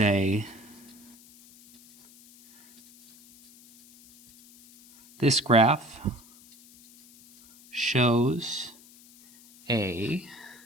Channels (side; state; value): left; noise; hiss, 25 dB below the sound